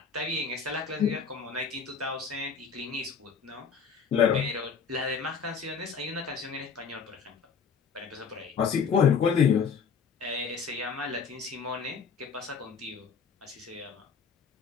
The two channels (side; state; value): right; quieter; 6.1 dB